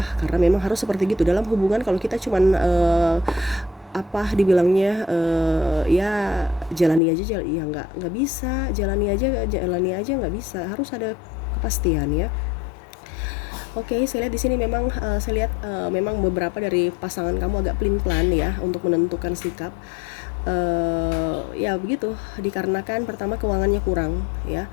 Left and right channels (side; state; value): right; drops out; at 7.0 s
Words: karena memang harus seperti gitu dalam hubungan. Kalau kita cuman dibilangnya ya jalani aja, ya nggak bisa, jalani aja nggak bisa, harus ada kepastian ya. Oke, saya lihat di sini memang saya lihat memang beberapa dari pasangan kamu agak pelin-pelan ya untuk menentukan sikap. Ya begitu, dikarenakan pertama keuangannya kurang ya,